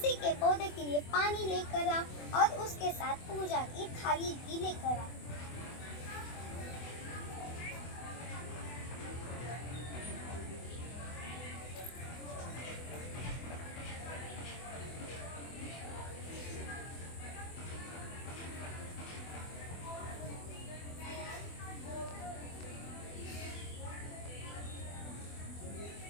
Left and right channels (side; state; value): right; late; 24 ms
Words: के पौधे के लिए पानी लेकर आओ और उसके साथ पूजा की थाली भी लेकर आओ।